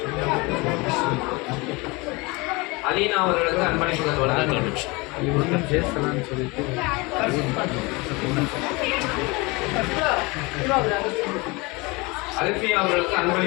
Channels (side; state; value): right; quieter; 25.4 dB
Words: அலீனா அவர்களுக்கு அன்பளிப்புகள் வழங்கப்படுகிறது. அல்ஃபியா அவர்களுக்கு